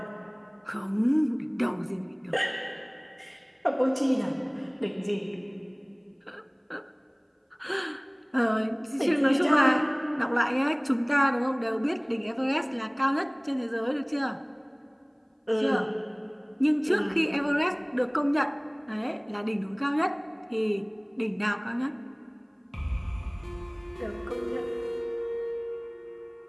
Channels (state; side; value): identical; both; correlation 1.00